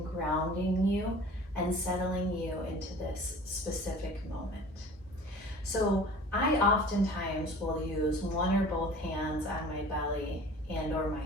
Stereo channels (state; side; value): normal; both; correlation 0.44